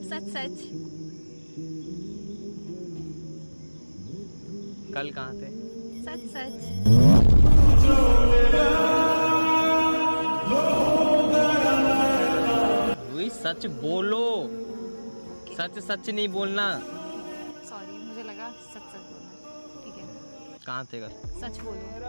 सच सच। कल कहाँ थे? सच सच। रूही सच बोलो, सच सच नहीं बोलना। सॉरी, मुझे लगा सच सच बोलना। ठीक है, कहाँ थे कल? सच बोलो।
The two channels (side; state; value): both; inverted; correlation -1.00